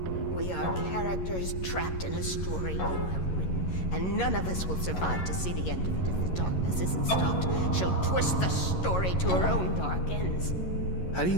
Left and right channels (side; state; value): right; late; 11 ms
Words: We are characters trapped in a story you have written, and none of us will survive to see the end of it if the darkness isn't stopped. She'll twist the story to her own dark ends. How do you